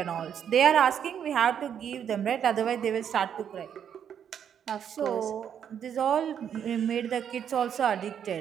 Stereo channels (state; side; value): quieter; left; 8.6 dB